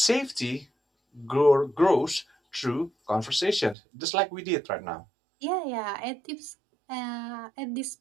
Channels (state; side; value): drops out; left; at 3.8 s